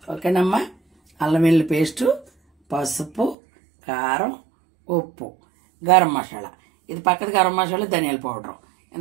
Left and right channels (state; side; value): drops out; left; at 3.4 s